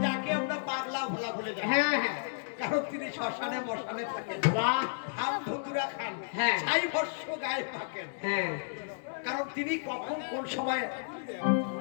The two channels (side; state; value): right; silent; digital silence